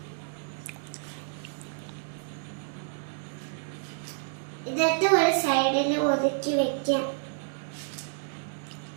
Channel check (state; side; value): silent; left; digital silence